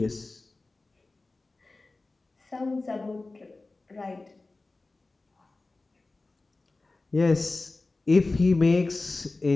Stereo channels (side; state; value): right; quieter; 3.3 dB